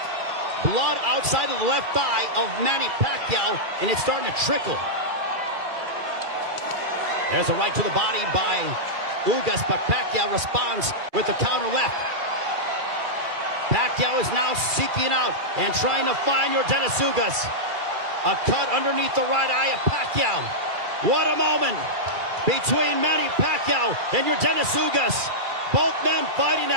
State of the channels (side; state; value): left; late; 2.4 ms